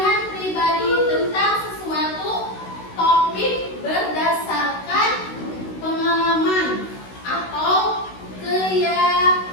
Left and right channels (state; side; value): late; right; 16 ms